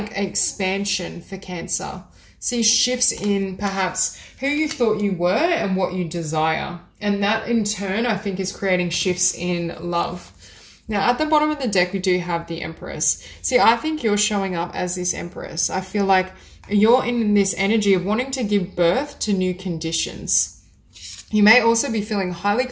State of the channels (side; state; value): both; identical; correlation 1.00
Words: expansion for Cancer. See shifts in perhaps who you thought you were and what you desire. And that in turn, I think is creating shifts in love. Now at the bottom of the deck, we do have the Empress. See, I think you're showing up as this Empress. I feel like you're in this energy of wanting to give birth to new conditions. You may also be feeling highly